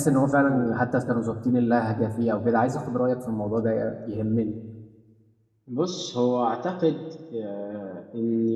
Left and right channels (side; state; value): both; identical; correlation 1.00